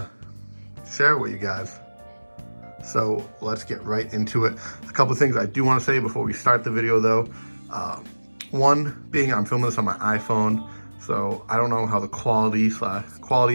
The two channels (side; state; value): both; inverted; correlation -1.00